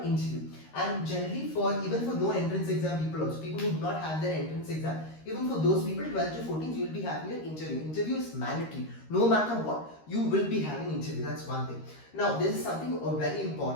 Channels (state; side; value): late; right; 13 ms